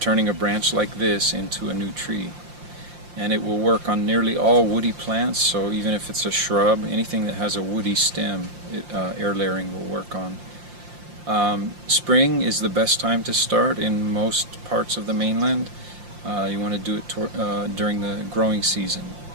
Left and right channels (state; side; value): late; left; 5.7 ms